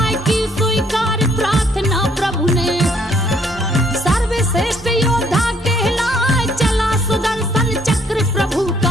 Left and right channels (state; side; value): normal; both; correlation 0.66